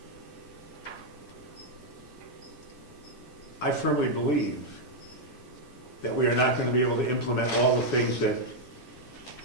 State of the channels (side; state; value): both; normal; correlation -0.01